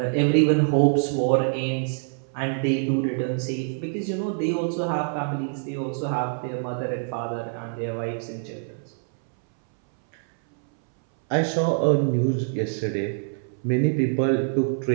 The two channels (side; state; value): left; silent; 62 dB below the other